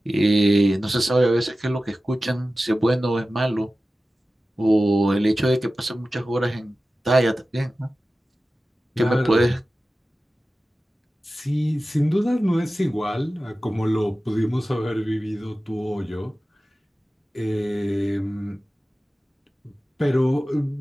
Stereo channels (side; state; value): both; normal; correlation 0.95